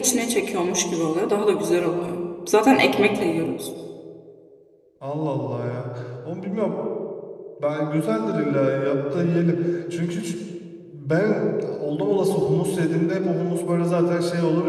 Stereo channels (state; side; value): identical; both; correlation 1.00